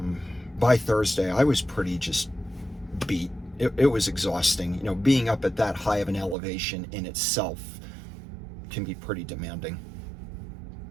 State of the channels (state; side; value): drops out; left; at 6.4 s